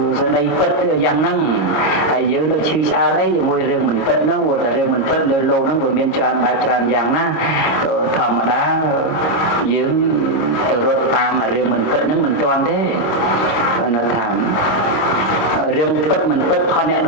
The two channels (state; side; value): late; right; 25 ms